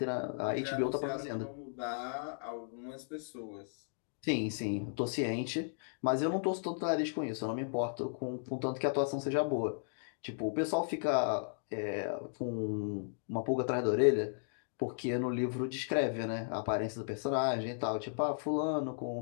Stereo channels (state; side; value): silent; right; digital silence